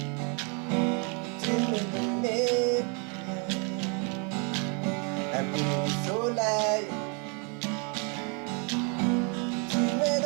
Tu m'es donné un peu de soleil. Tu m'es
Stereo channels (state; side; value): quieter; left; 36.0 dB